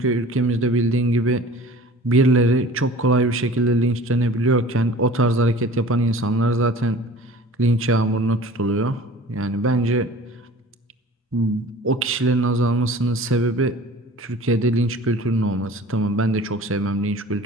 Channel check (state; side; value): normal; both; correlation 0.43